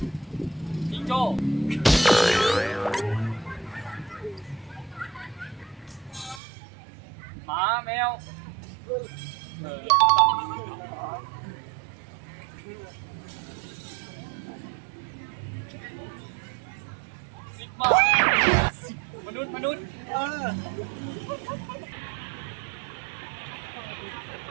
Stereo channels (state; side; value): drops out; left; at 6.4 s